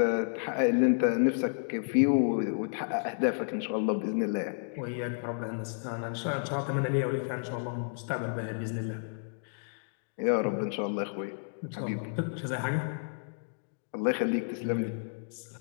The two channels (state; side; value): silent; right; digital silence